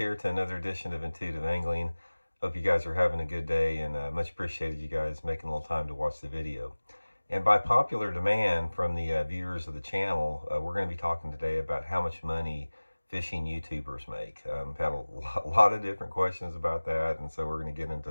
to another edition of Intuitive Angling. Hope you guys are having a good day, and much appreciated you guys making a little time to watch the video. And by popular demand from the viewers of the channel, we're going to be talking today about how much money fishing YouTubers make. Had a lot of different questions about that, and so we're going to get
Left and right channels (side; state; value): both; inverted; correlation -1.00